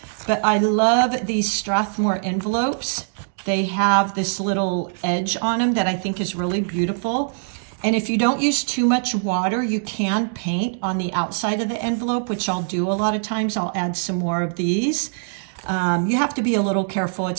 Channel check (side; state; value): left; silent; digital silence